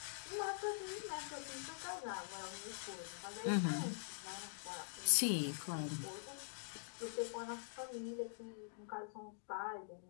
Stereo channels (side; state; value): right; silent; digital silence